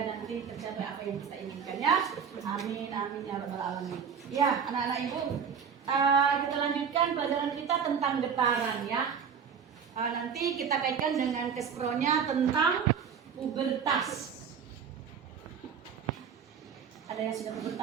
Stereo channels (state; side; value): quieter; left; 7.0 dB